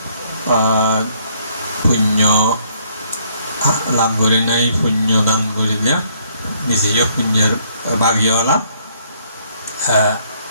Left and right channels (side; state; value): both; inverted; correlation -0.66